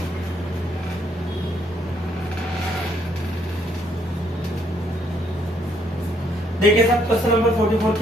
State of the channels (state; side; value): normal; both; correlation 0.70